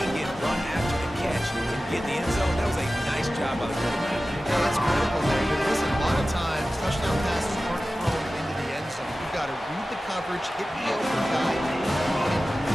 get run after the catch and get in the end zone. That was a nice job by the quarterback. Yeah, that's critical there. Listen, a lot of times, touchdown passes aren't thrown into the end zone. You've got to read the coverage, hit the open guy,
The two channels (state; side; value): normal; both; correlation 0.95